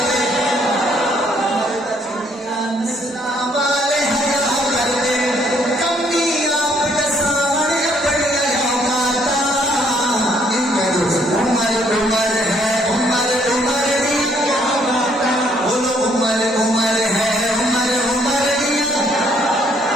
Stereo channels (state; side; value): normal; both; correlation 0.67